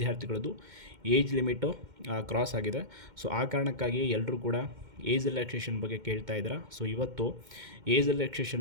ಏಜ್ ಲಿಮಿಟು ಕ್ರಾಸ್ ಆಗಿದೆ. ಆ ಕಾರಣಕ್ಕಾಗಿ ಎಲ್ಲರೂ ಕೂಡ ಏಜ್ ರಿಲ್ಯಾಕ್ಸೇಷನ್ ಬಗ್ಗೆ ಕೇಳ್ತಾ ಇದ್ದಾರೆ. ಇವತ್ತು ಏಜ್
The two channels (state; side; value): late; left; 2.1 ms